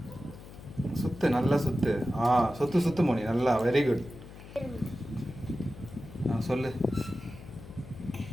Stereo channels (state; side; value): noise; left; hum, 16 dB below the sound